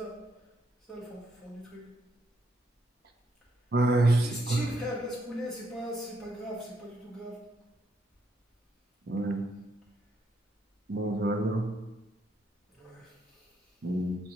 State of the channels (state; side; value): normal; both; correlation 0.76